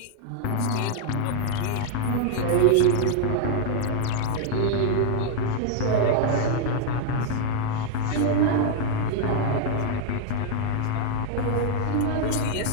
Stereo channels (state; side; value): different; both; correlation 0.00